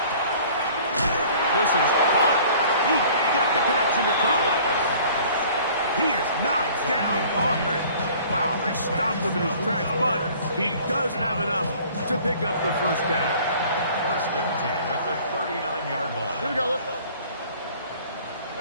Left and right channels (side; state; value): both; inverted; correlation -0.50